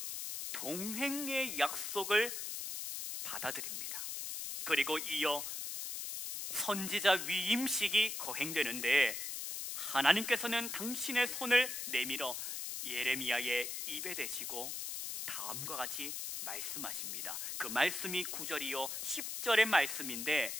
동행의 약속을 받아들입니다. 그리고 이어 선지자 위임식이 거행되는데, 하나님께서는 당신의 손을 내밀어 예레미야의 입에 대시고 다음과 같이 말씀하십니다. 그 말씀이 9절이요 10절의 말씀인데,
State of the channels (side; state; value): left; noise; hiss, 4 dB below the sound